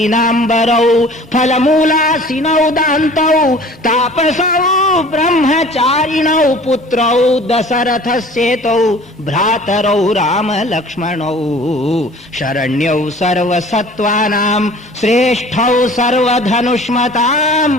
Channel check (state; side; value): normal; both; correlation 0.47